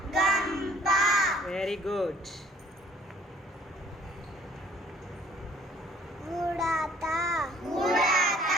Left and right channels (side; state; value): both; normal; correlation 0.57